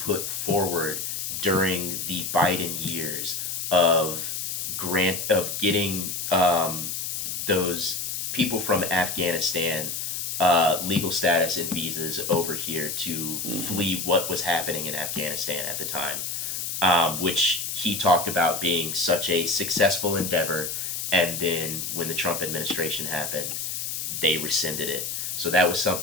forward during the Biden years of getting those people from Afghanistan legal status and visas over here to flee what was happening in Afghanistan at the time, which he talked about being such a successful endeavor, and then when the Trump administration happened, they rescinded it. So that was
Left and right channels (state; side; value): noise; left; hiss, 3 dB below the sound